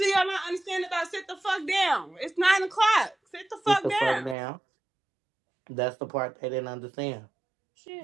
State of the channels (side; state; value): left; drops out; at 4.4 s